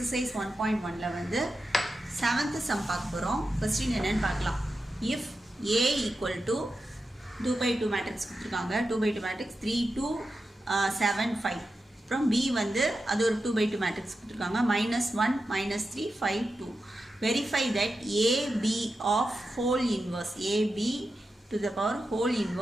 1.1ல வந்து 7th sum பார்க்க போறோம். क्वेश्चन என்னன்னு பார்க்கலாம். If A equal to 2 by 2 matrix கொடுத்திருக்காங்க. 2 by 2 matrix 3 2 7 5. அப்புறம் B வந்து அது ஒரு 2 by 2 matrix கொடுத்திருக்காங்க. -1 -3 5 2. Verify that AB of whole inverse AB to the power whole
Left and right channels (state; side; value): normal; both; correlation 0.90